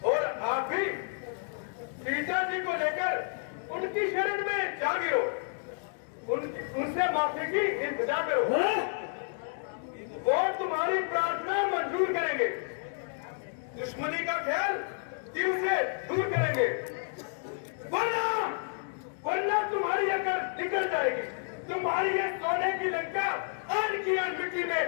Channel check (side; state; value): right; silent; 57 dB below the other